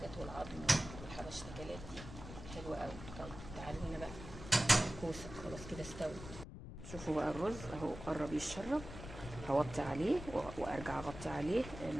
والعظم والحبشتكنات دي حلوه قوي. طيب تعالوا هنا بقى الكوسه، خلاص كده استوت. شوفوا بقى الرز اهو قرب يتشرب، هوطي عليه وارجع اغطي عليه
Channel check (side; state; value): left; noise; rumble, 11 dB below the sound